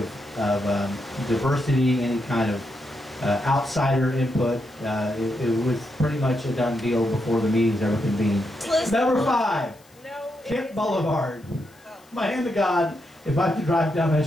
diversity, any kind of outsider input. It was pretty much a done deal before the meetings ever convened. Number 5, Kent Boulevard. My hand to God, if I have to drive down that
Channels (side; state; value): left; noise; hiss, 29 dB below the sound